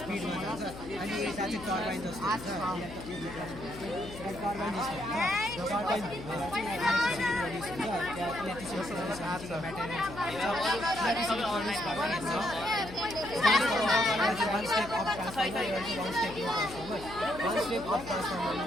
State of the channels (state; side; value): noise; left; hum, 13 dB below the sound